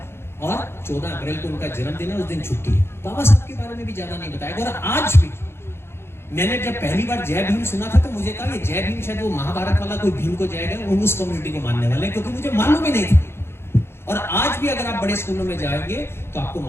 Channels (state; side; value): late; right; 0.12 ms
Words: और 14 अप्रैल को उनका जन्मदिन है, उस दिन छुट्टी है। बाबा साहब के बारे में भी ज्यादा नहीं बताया। और आज भी मैंने जब पहली बार जय भीम सुना था तो मुझे कहा ये जय भीम शायद वो महाभारत वाला कोई भीम को जाएगा, वो उस कम्युनिटी को मानने वाले, क्योंकि मुझे मालूम ही नहीं था। और आज भी अगर आप बड़े स्कूलों में जाएंगे तो आपको